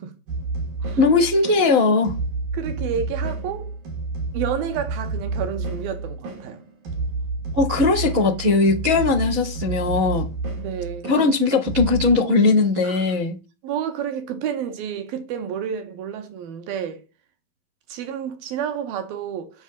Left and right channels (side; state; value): left; late; 11 ms